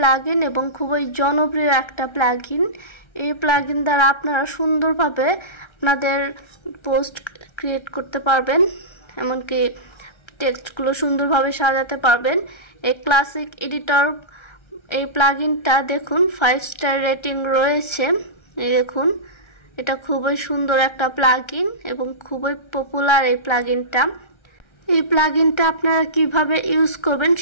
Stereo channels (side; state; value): right; late; 1.3 ms